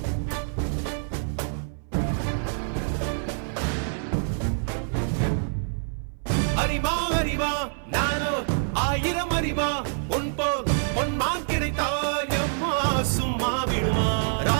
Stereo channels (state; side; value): silent; left; 58 dB below the other